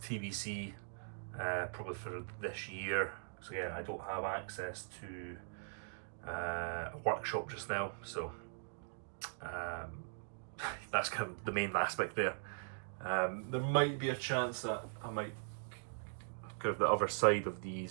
TBC, probably for this year. So again, I don't have access to a workshop just now, so that's kind of the main aspect there. There might be a chance that I might kind of the other side of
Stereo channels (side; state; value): left; silent; digital silence